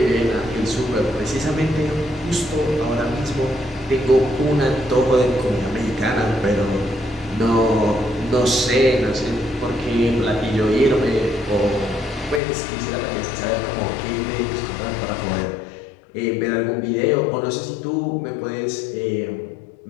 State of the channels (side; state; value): right; drops out; at 12.4 s